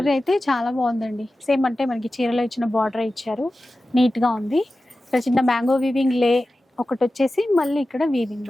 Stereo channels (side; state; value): both; normal; correlation 0.94